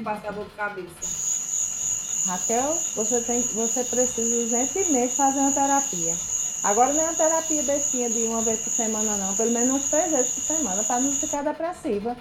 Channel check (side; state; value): both; identical; correlation 1.00